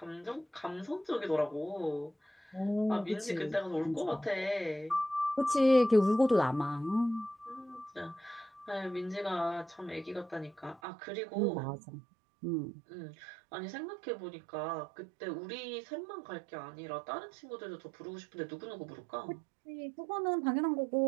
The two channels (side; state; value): left; drops out; at 10.8 s